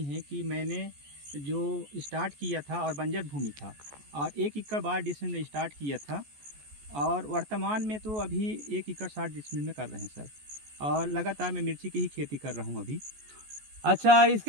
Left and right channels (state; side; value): late; left; 14 ms